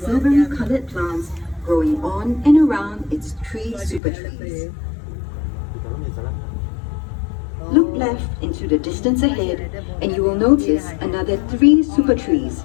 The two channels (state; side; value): drops out; right; at 4.0 s